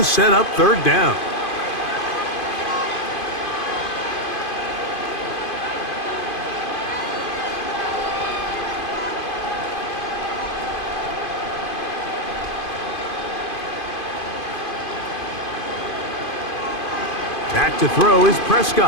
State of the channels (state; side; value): late; right; 2.5 ms